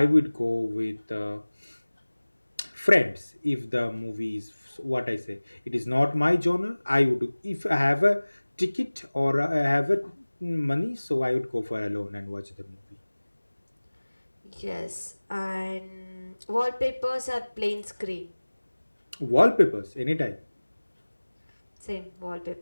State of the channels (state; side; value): inverted; both; correlation -1.00